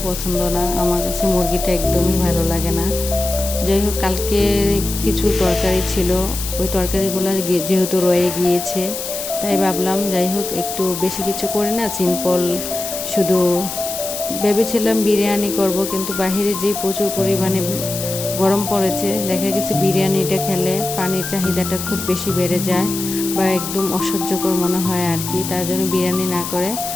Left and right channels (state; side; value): noise; left; hiss, 6 dB below the sound